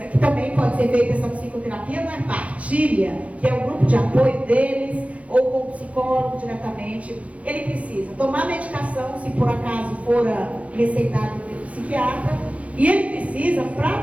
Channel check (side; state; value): left; late; 0.065 ms